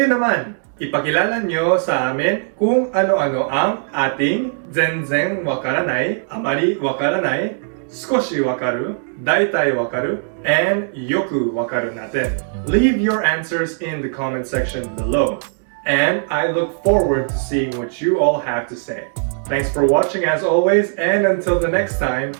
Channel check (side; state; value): left; silent; digital silence